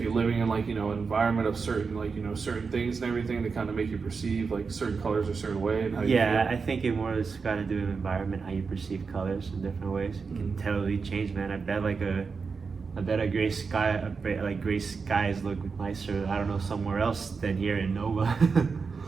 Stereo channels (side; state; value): left; quieter; 5.1 dB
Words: you're living in like an environment of certain certain things and everything that kind of make you perceive like certain colors a certain way and how you Yeah, feel? I think it more has got to do with environment, how you perceive colors in different ways. It can totally change, man. I bet a gray sky, like gray skies look nicer, I don't know, somewhere else than here in Nova.